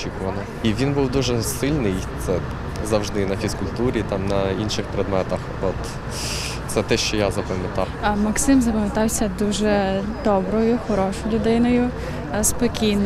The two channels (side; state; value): both; identical; correlation 1.00